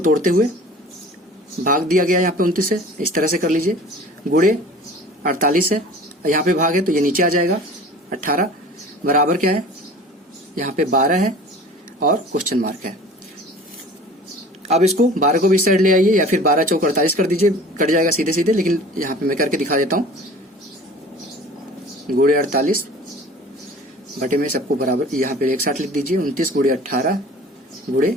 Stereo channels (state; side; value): normal; both; correlation 0.43